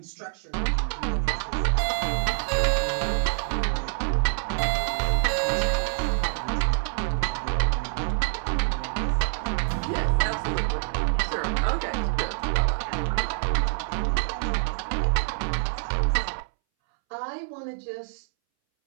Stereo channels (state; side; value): silent; left; 61 dB below the other